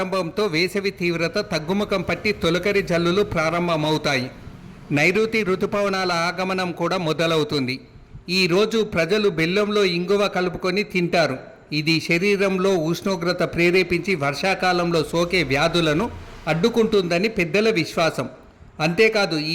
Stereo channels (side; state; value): both; identical; correlation 1.00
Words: వేసవి తీవ్రత తగ్గుముఖం పట్టి తొలకరి జల్లులు ప్రారంభమవుతాయి. నైరుతి ఋతుపవనాల ఆగమనం కూడా మొదలవుతుంది. ఈరోజు ప్రజలు బెల్లంలో ఇంగువ కలుపుకొని తింటారు. ఇది శరీరంలో ఉష్ణోగ్రత ప్రేరేపించి వర్షాకాలంలో సోకే వ్యాధులను అడ్డుకుంటుందని పెద్దల విశ్వాసం. అంతేకాదు